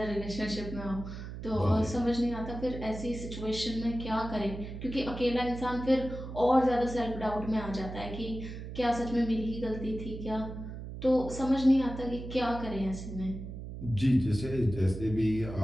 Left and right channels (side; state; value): right; noise; hum, 9 dB below the sound